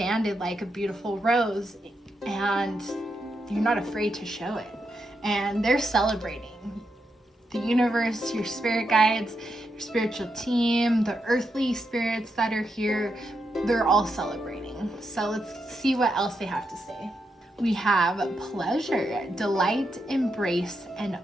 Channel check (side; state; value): both; normal; correlation 0.84